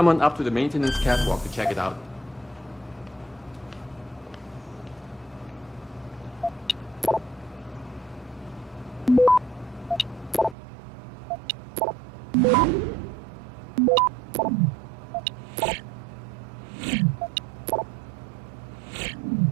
up to the maintenance catwalk to check it out.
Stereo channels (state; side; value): drops out; left; at 10.6 s